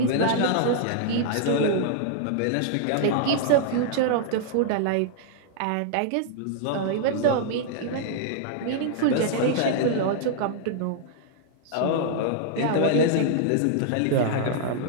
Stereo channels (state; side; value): different; both; correlation -0.01